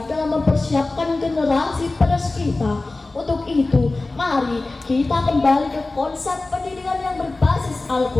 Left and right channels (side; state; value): right; quieter; 3.2 dB